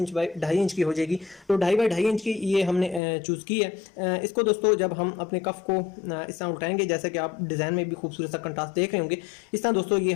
बाई 2.5 इंच की हो जाएगी। तो 2.5 बाई 2.5 इंच की ये हमने चूज़ की है। इसको दोस्तों जब हम अपने कफ को इस तरह उठाएंगे, जैसे कि आप डिज़ाइन में भी खूबसूरत सा कंट्रास्ट देख रहे होंगे, इस तरह दोस्तों ये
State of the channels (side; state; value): right; drops out; at 3.0 s